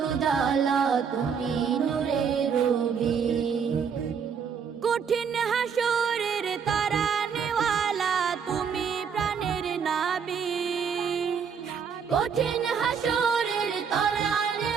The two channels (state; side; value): quieter; left; 6.7 dB